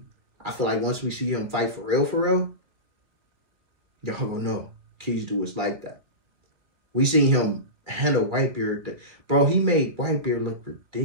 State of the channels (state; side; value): late; left; 2.2 ms